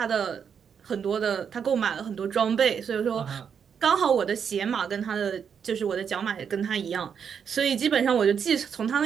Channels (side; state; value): left; quieter; 7.2 dB